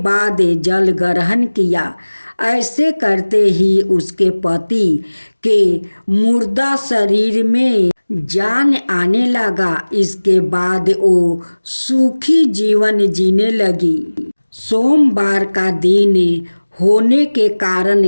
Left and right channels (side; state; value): both; inverted; correlation -1.00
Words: बाद जल ग्रहण किया। ऐसे करते ही उसके पति के मुर्दा शरीर में जान आने लगा। इसके बाद वो सुखी जीवन जीने लगी। सोमवार का दिन होने के